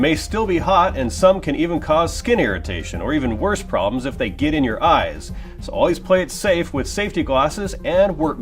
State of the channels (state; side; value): identical; both; correlation 1.00